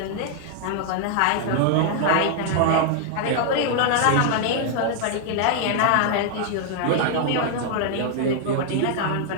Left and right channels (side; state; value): both; different; correlation 0.00